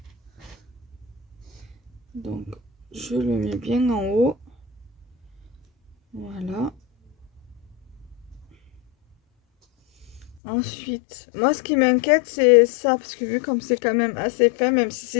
Donc je le mets bien en haut. Voilà. Ensuite, moi ce qui m'inquiète c'est ça, parce que vu comme c'est quand même assez fin, même si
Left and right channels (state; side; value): drops out; right; at 10.4 s